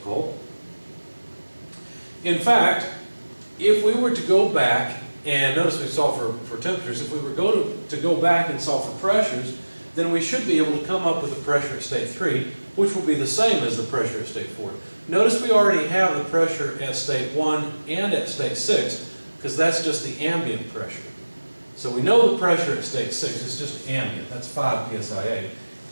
In fact, if we were to go back, and notice we solved for temperatures, if we were to go back and solve for pressures, then we should be able to come up with the pressure at state 3, which will be the same as the pressure at state 4. Notice we already have the pressure at state 1 and at state 6, because that's just the ambient pressure. So we know the pressure at state 6 is just ambient, that's 5 psia.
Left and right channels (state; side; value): inverted; both; correlation -1.00